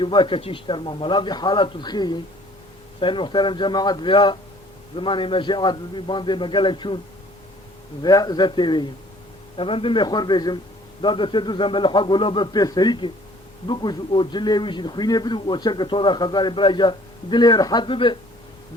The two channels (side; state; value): both; normal; correlation 0.55